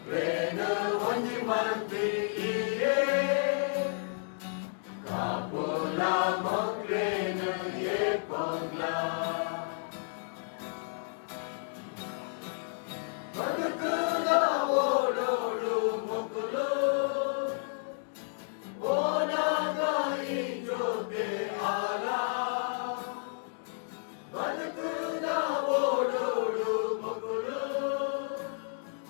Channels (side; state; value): right; silent; digital silence